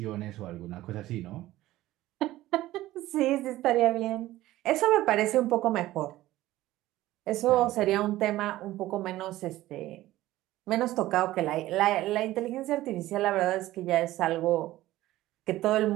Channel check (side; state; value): left; quieter; 15.9 dB